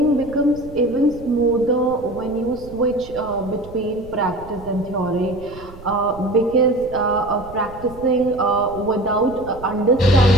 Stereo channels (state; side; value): noise; right; rumble, 18 dB below the sound